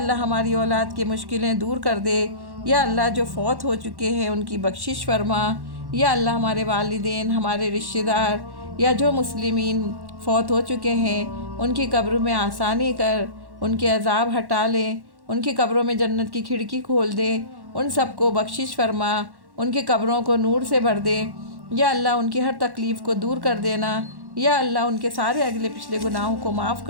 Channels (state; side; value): late; left; 1.1 ms